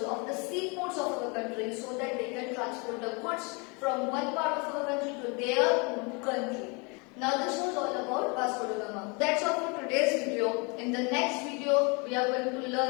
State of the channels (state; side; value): quieter; right; 31.1 dB